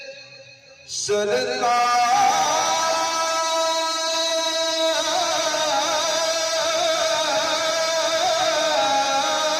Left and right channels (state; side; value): identical; both; correlation 1.00